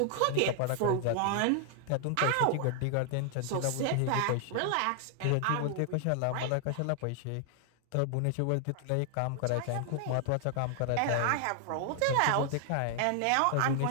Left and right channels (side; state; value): both; different; correlation 0.00